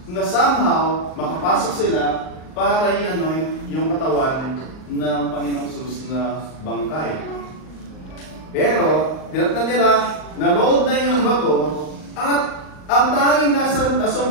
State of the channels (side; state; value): right; late; 38 ms